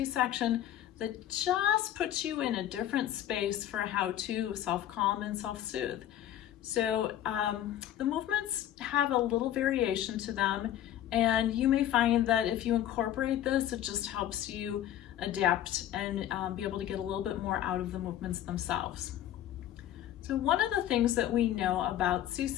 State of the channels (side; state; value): right; quieter; 11.8 dB